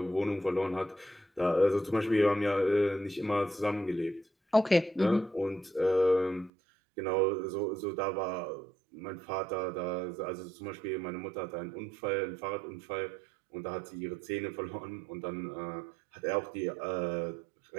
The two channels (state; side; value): drops out; left; at 6.5 s